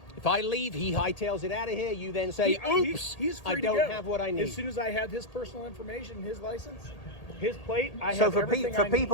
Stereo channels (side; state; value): right; late; 1.8 ms